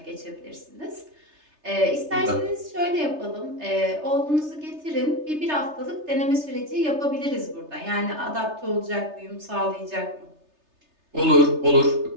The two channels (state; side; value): late; left; 3.3 ms